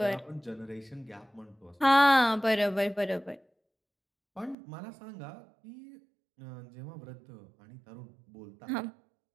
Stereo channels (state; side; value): drops out; left; at 4.5 s